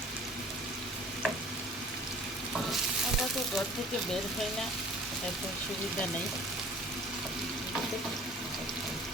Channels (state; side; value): normal; both; correlation 0.49